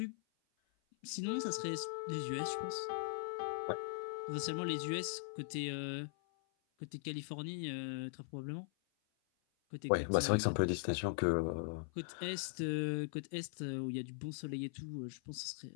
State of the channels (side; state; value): right; silent; 51 dB below the other